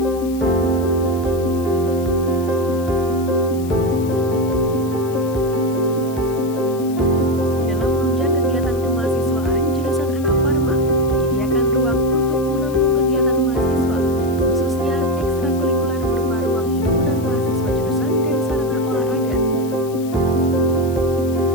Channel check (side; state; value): left; noise; hiss, 19 dB below the sound